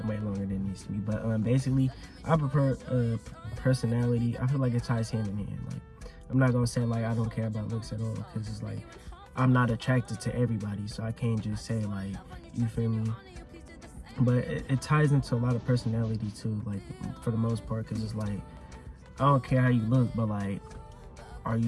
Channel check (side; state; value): both; identical; correlation 1.00